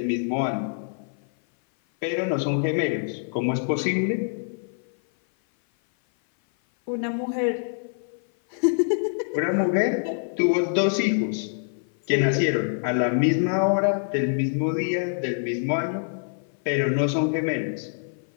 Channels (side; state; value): right; silent; 56 dB below the other